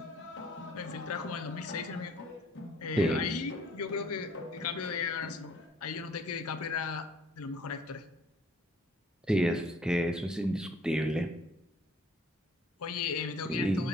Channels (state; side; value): normal; both; correlation 0.58